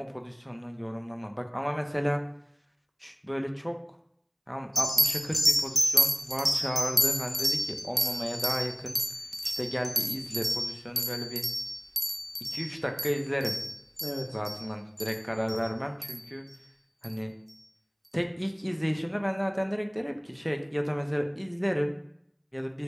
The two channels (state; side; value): identical; both; correlation 1.00